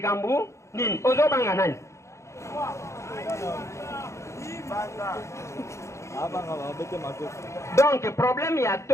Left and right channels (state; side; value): late; right; 0.14 ms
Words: nini ozo banga nani donc problème ya